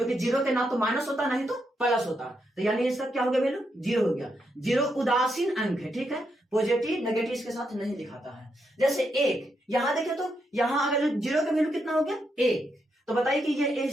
0 के ना तो माइनस होता नहीं तो प्लस होता, तो यानी इसका क्या हो गया वैल्यू, 0 हो गया। 0 उदासीन अंक है, ठीक है, पॉजिटिव नेगेटिव इसके साथ नहीं दिखाता है। जैसे 1, यहां देखे तो यहाँ अगर 0 का वैल्यू कितना हो गया 1, तो बताइए कि ये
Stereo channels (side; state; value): both; normal; correlation 0.81